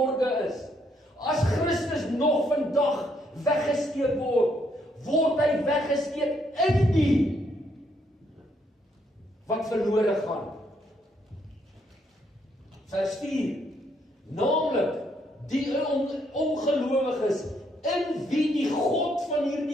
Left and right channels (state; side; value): normal; both; correlation 0.73